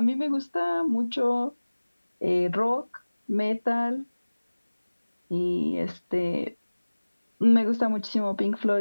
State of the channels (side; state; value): both; inverted; correlation -1.00